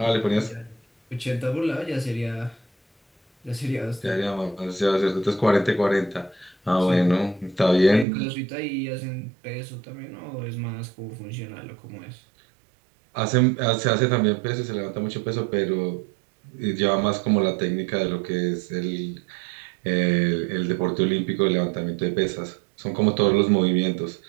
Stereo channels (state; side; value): drops out; left; at 8.1 s